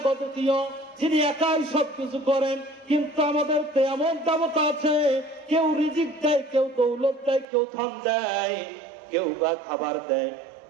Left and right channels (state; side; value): drops out; left; at 7.5 s